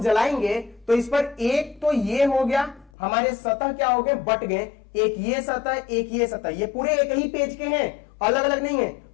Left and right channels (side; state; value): right; drops out; at 2.9 s